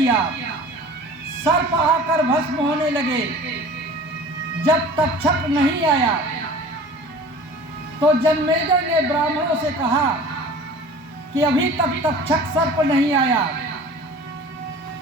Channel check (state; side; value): normal; both; correlation 0.42